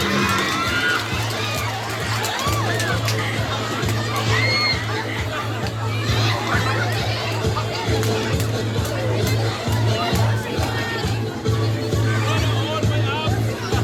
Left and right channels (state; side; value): identical; both; correlation 1.00